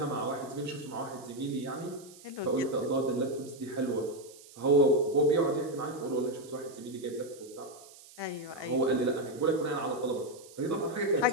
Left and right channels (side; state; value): right; noise; hiss, 21 dB below the sound